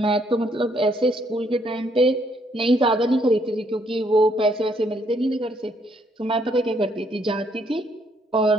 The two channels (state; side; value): normal; both; correlation 0.70